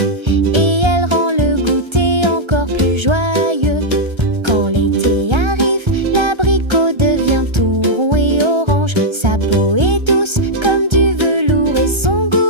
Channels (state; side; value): late; left; 1.3 ms